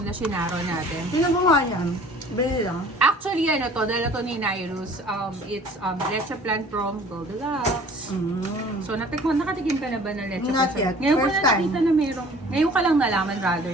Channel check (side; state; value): both; normal; correlation 0.49